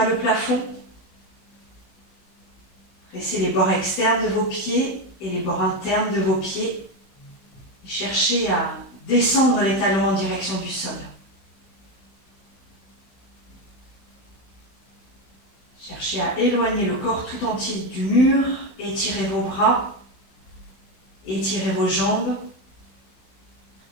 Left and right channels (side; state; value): right; late; 16 ms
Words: le plafond. Pressez les bords externes de vos pieds et les bords internes de vos pieds. Et cherchez à descendre les talons en direction du sol. Cherchez à éloigner le corps tout entier du mur. Étirez vos bras. Étirez vos jambes.